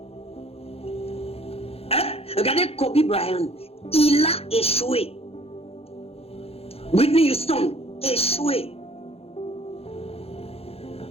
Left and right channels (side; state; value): right; late; 0.29 ms